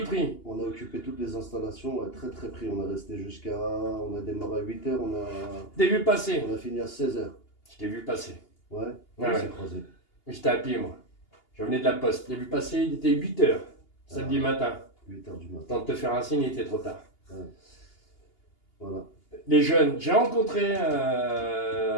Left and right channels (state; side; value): late; right; 2.8 ms